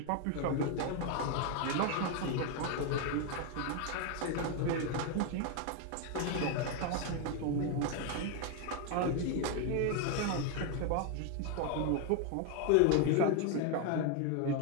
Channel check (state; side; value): different; both; correlation 0.01